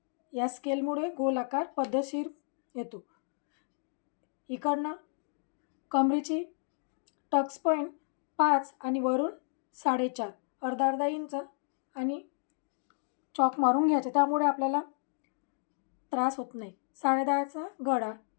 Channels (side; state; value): right; silent; digital silence